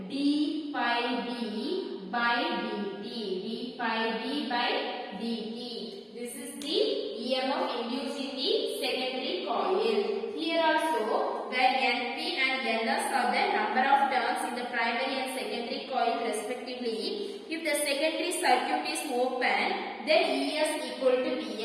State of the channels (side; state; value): both; identical; correlation 1.00